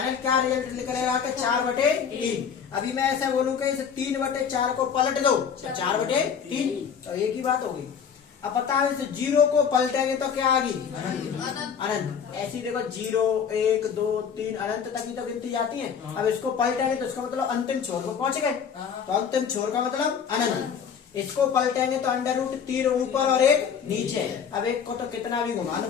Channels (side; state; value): right; quieter; 7.2 dB